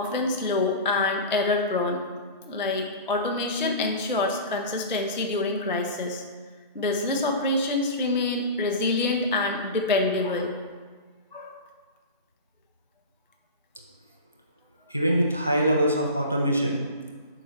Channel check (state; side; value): inverted; both; correlation -0.30